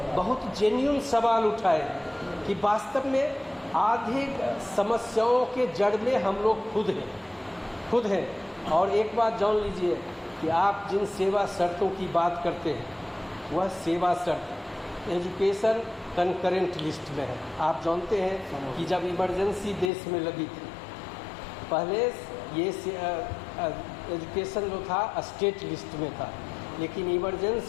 बहुत जेन्युइन सवाल उठाए कि वास्तव में आधी समस्याओं के जड़ में हम लोग खुद हैं। और एक बात जान लीजिए कि आप जिन सेवा शर्तों की बात करते हैं, वह सेवा शर्त एजुकेशन कंकरेंट लिस्ट में है। आप जानते हैं कि जब इमरजेंसी देश में लगी थी, पहले ये एजुकेशन जो था स्टेट लिस्ट में था, लेकिन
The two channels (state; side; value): drops out; right; at 19.9 s